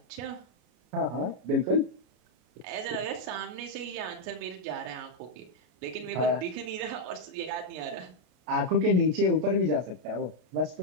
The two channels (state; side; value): late; left; 33 ms